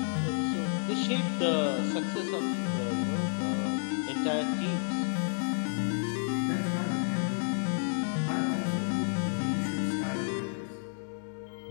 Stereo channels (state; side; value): silent; right; 57 dB below the other